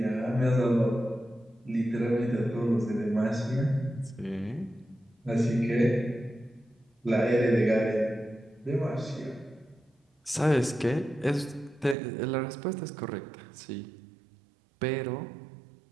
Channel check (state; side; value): drops out; left; at 12.0 s